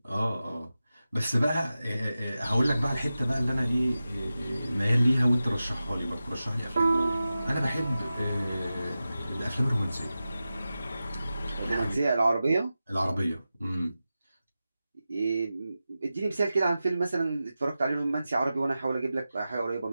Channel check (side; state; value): both; inverted; correlation -0.94